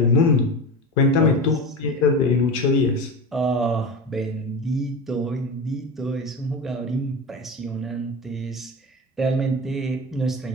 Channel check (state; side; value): normal; both; correlation 0.26